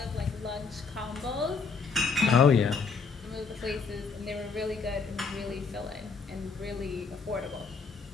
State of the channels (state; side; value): quieter; right; 4.9 dB